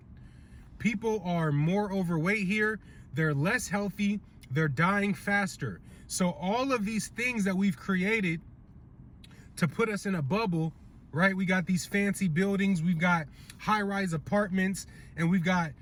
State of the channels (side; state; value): both; identical; correlation 1.00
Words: People are more overweight here. They're less healthy. They're dying faster. So all of these things that we've created to put us in a bubble, right? We got these fancy buildings, we've got high-rise apartments, and we've got